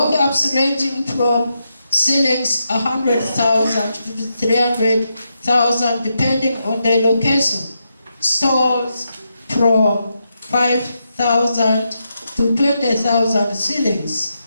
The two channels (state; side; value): inverted; both; correlation -0.84